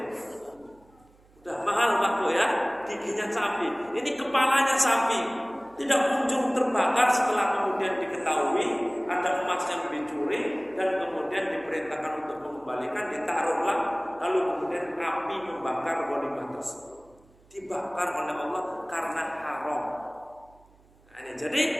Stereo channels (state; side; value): noise; right; hum, 30 dB below the sound